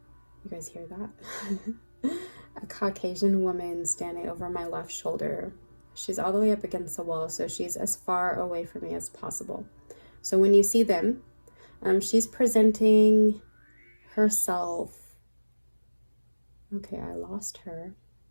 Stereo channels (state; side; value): inverted; both; correlation -1.00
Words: You guys hear that? A Caucasian woman standing over my left shoulder. She's all the way up against the wall, so she's as far away from me as possible. So when you see them, she's presenting herself. Okay, I lost her.